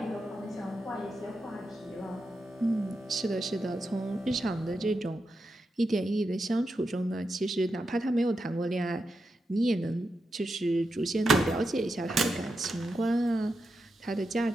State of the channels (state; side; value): normal; both; correlation 0.87